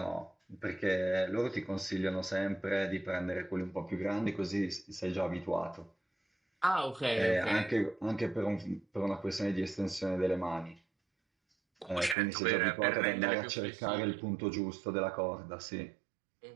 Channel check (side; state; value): left; drops out; at 12.2 s